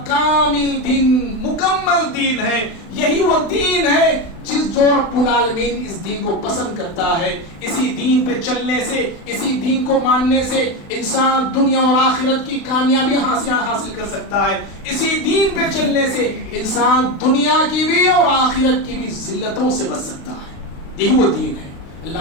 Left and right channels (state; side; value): late; right; 36 ms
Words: کامل دین، مکمل دین ہے، یہی وہ دین ہے جس جو رب العالمین اس دین کو پسند کرتا ہے۔ اسی دین پہ چلنے سے، اسی دین کو ماننے سے انسان دنیا اور آخرت کی کامیابی حاصل کر سکتا ہے۔ اسی دین پہ چلنے سے انسان دنیا کی بھی اور آخرت کی بھی ذلتوں سے بچ سکتا ہے۔ یہی وہ دین ہے۔